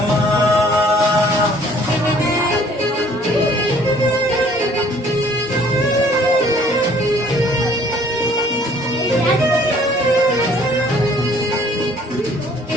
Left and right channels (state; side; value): normal; both; correlation 0.58